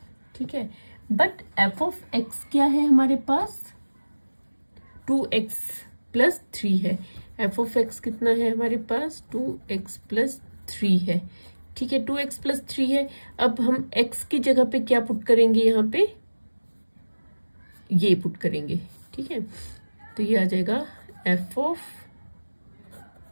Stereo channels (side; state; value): both; inverted; correlation -1.00